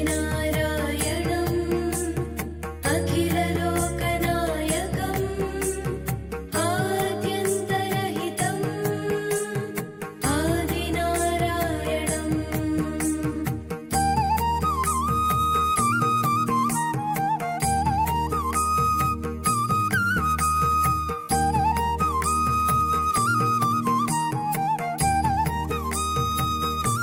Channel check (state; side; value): identical; both; correlation 1.00